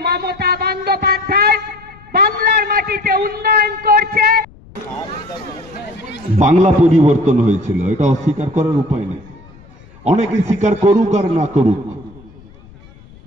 মমতা বন্দ্যোপাধ্যায় বাংলার মাটিতে উন্নয়ন করছে। বাংলা পরিবর্তন হয়েছিল, এটা অস্বীকার করার উপায় নেই। অনেকে স্বীকার করুক আর না করুক,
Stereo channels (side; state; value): left; noise; rumble, 24 dB below the sound